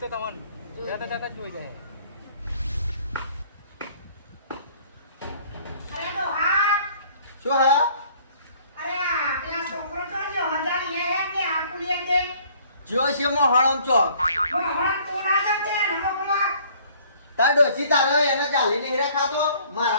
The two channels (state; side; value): inverted; both; correlation -0.57